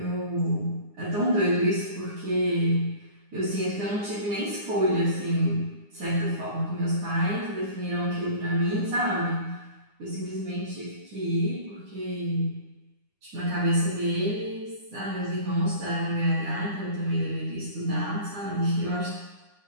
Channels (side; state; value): left; late; 9.8 ms